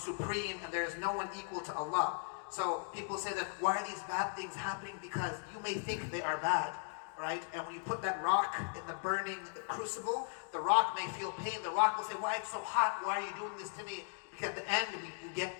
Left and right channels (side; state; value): right; silent; 53 dB below the other